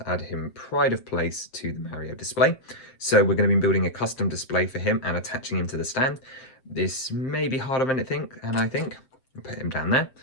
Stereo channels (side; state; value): right; late; 7.5 ms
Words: add him pride of place to the Mario display. So we're going to be building a custom display for him and attaching him to the stand. This may be harder than I think, and I think I'll put him down there.